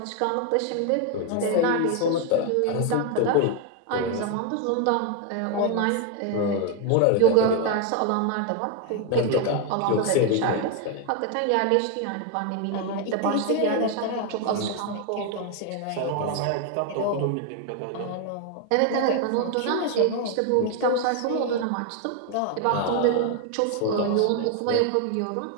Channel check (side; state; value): both; different; correlation 0.01